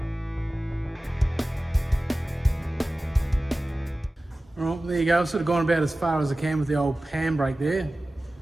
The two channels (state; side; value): normal; both; correlation 0.96